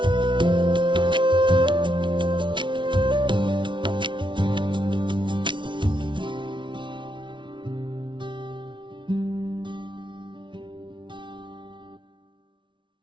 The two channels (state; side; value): late; left; 0.24 ms